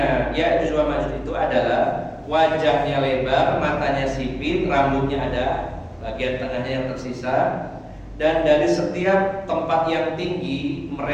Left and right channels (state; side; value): identical; both; correlation 1.00